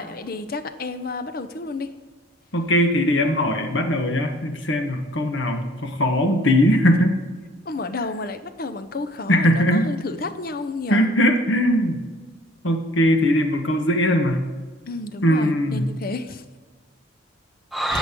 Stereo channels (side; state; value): both; normal; correlation 0.55